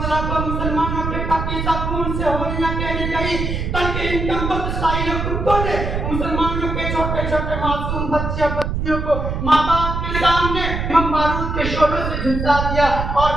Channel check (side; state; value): right; noise; rumble, 3 dB below the sound